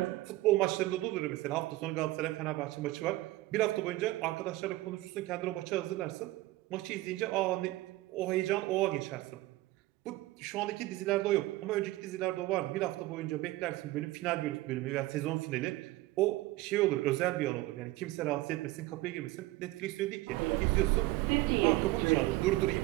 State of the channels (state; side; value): quieter; left; 18.3 dB